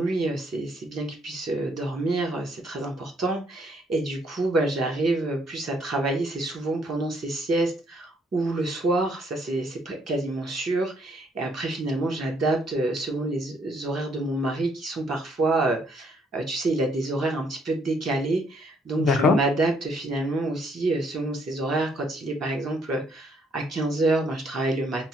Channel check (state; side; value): normal; both; correlation 0.68